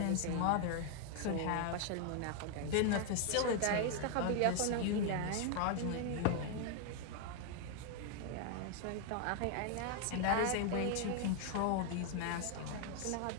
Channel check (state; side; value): different; both; correlation 0.01